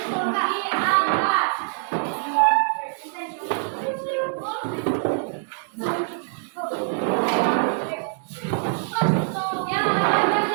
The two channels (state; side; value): silent; left; 62 dB below the other